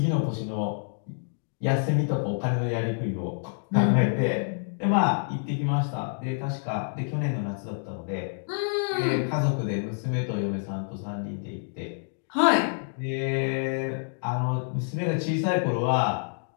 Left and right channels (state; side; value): silent; right; digital silence